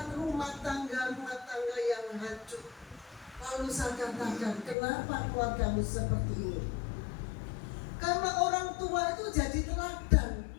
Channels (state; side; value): drops out; right; at 4.8 s